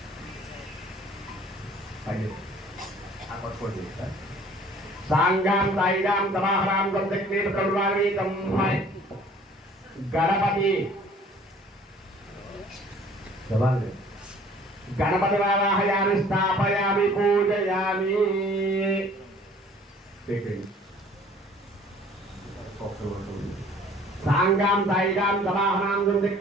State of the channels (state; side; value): normal; both; correlation 0.52